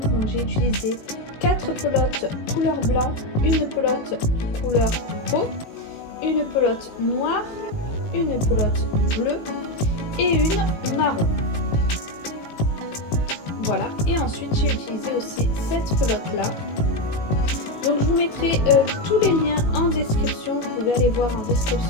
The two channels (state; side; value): late; right; 18 ms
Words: j'ai utilisé 4 pelotes couleur blanc, une pelote couleur peau, une pelote noire, une pelote bleue et une marron. Voilà, et ensuite j'ai utilisé aussi cette pelote là. Donc je vous mettrai tous les liens en description. Vous pouvez aller voir en